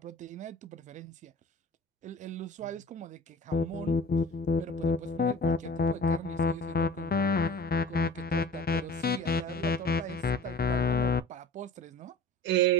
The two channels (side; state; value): both; normal; correlation 0.41